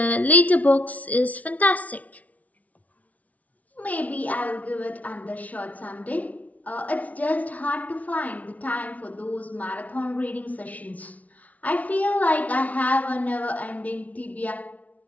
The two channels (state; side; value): late; right; 0.070 ms